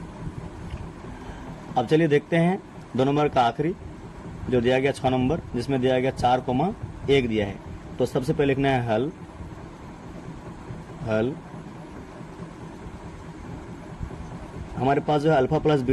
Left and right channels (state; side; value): identical; both; correlation 1.00